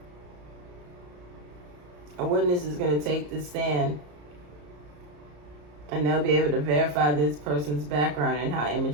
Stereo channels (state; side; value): late; left; 34 ms